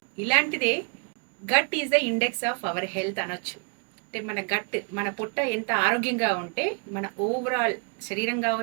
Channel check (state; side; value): quieter; left; 38.9 dB